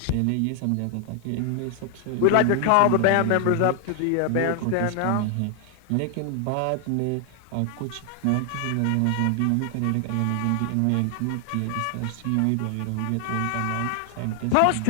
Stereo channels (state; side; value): different; both; correlation 0.00